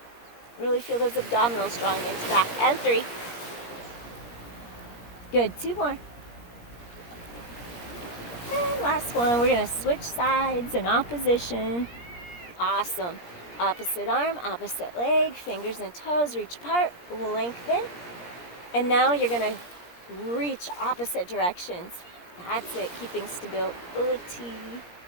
really feel those abdominals drawing into back. And 3, good, 2 more. And last one, we're gonna switch sides in opposition. Awesome. Opposite arm, opposite leg, fingers and toes, reach apart, lengthen. And now you're gonna reach opposite directions. That's it, keeping stability.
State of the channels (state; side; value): late; right; 17 ms